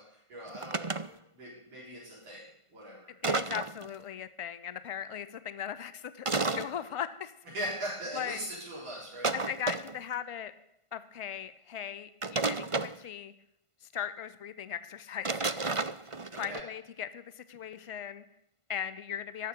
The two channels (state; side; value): late; left; 1.5 ms